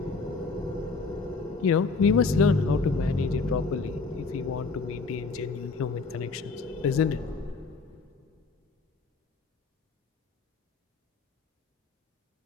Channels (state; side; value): quieter; right; 4.3 dB